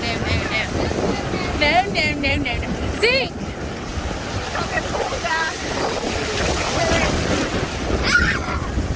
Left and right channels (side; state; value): both; identical; correlation 1.00